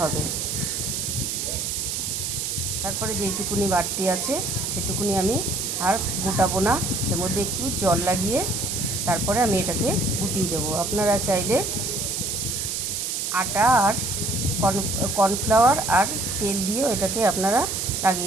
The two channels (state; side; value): noise; right; hiss, 2 dB below the sound